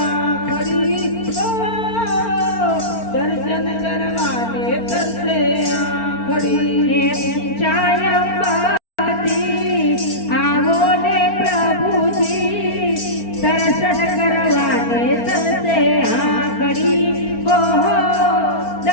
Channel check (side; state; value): right; late; 4.4 ms